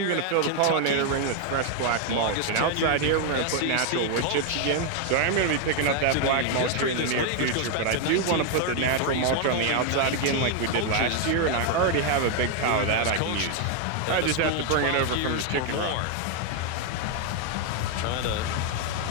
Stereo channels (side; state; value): both; different; correlation 0.00